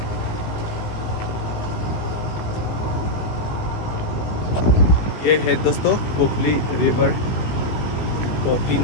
ये है दोस्तों पोखली रिवर, पोखली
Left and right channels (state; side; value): late; right; 18 ms